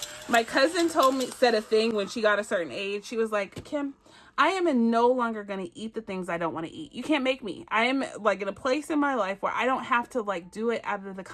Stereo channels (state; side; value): identical; both; correlation 1.00